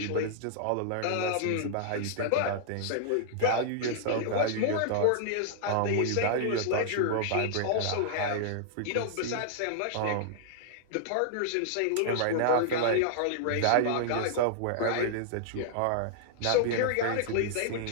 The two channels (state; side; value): different; both; correlation -0.01